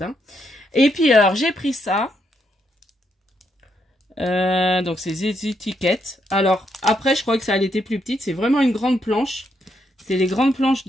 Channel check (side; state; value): both; normal; correlation 0.78